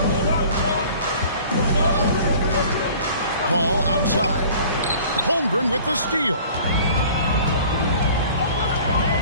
Ball outside. Holmgren with the steal.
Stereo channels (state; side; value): inverted; both; correlation -0.47